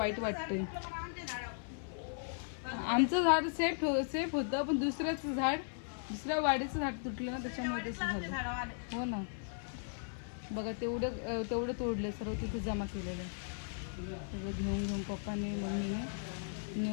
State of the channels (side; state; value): right; silent; 53 dB below the other